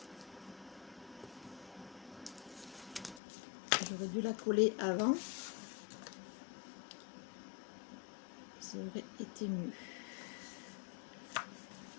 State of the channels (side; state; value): right; drops out; at 3.2 s